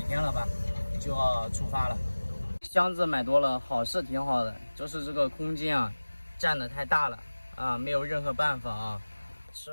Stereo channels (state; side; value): inverted; both; correlation -1.00